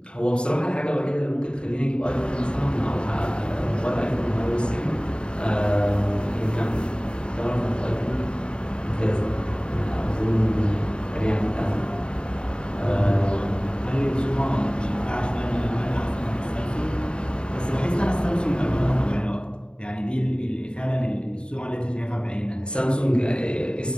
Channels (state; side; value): late; right; 0.052 ms